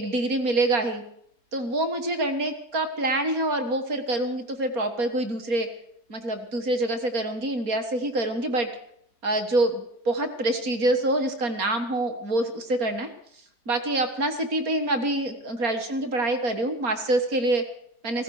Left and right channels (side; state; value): left; late; 4.3 ms